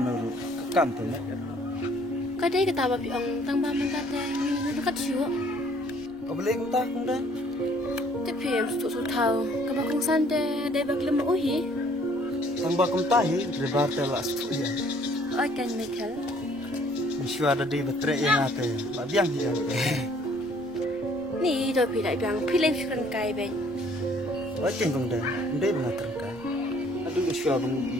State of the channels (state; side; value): noise; right; rumble, 27 dB below the sound